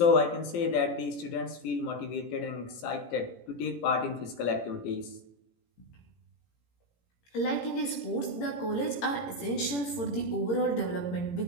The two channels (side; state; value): right; late; 17 ms